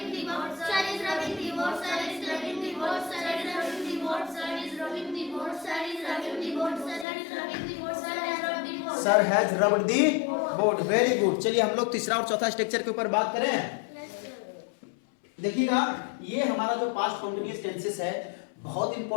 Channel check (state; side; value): drops out; right; at 7.1 s